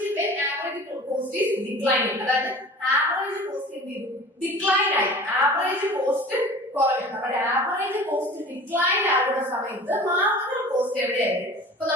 when average cost is declining. അതായത് ആവറേജ് കോസ്റ്റ് എന്ത് ചെയ്യും? ഡിക്ലൈൻ ആയി. ആവറേജ് കോസ്റ്റ് കുറയും. നമ്മുടെ ആവറേജ് കോസ്റ്റ് ഡിക്ലൈൻ ആകുന്ന സമയത്ത് മാർജിനൽ കോസ്റ്റ് എവിടെയായിരിക്കും? അപ്പൊ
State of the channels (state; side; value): normal; both; correlation 0.41